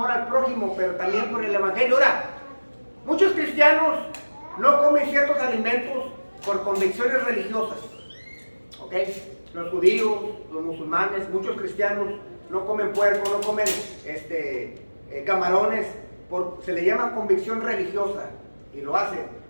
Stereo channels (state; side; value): inverted; both; correlation -1.00